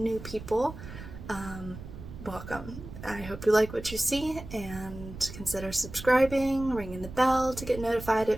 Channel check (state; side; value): noise; right; rumble, 13 dB below the sound